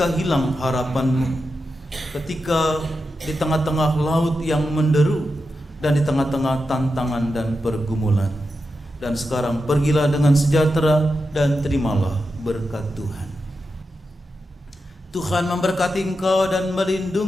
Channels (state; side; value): normal; both; correlation 0.89